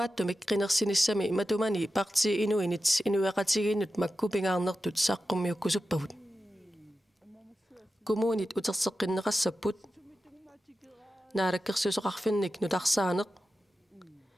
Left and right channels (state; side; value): normal; both; correlation 0.92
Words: qinерсиниссами матумани парти инуинит инуяқатигииннут маккупингаарнертут сааққуммиуккусуппагут коммунит утерсеққиннеқассаппут наалаккерсусоқарфинник нутарсаанеқ